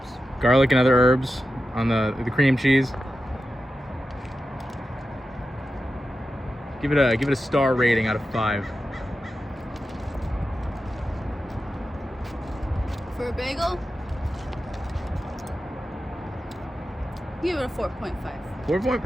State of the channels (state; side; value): normal; both; correlation 0.91